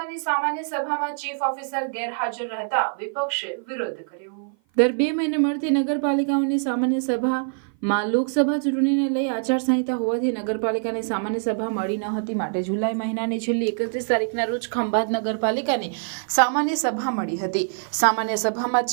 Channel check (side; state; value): left; silent; 55 dB below the other